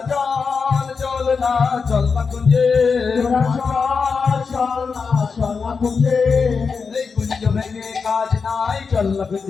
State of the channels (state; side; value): quieter; right; 5.2 dB